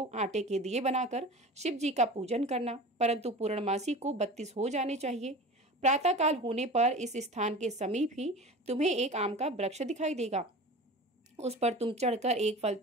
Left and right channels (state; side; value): normal; both; correlation 0.35